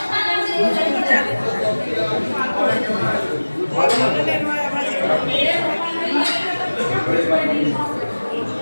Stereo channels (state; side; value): inverted; both; correlation -1.00